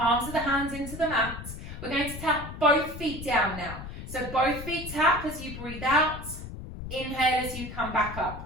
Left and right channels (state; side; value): noise; left; rumble, 10 dB below the sound